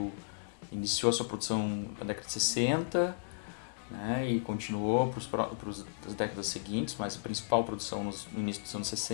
que iniciou a sua produção na década de 60, né, e continuou para as décadas seguintes, mas a principal produção no início dos anos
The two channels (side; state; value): right; silent; 55 dB below the other